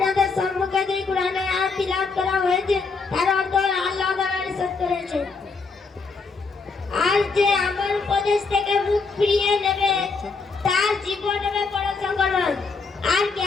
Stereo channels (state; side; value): quieter; right; 4.5 dB